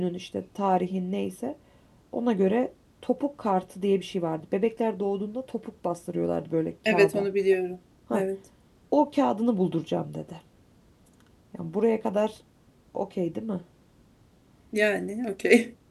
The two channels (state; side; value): identical; both; correlation 1.00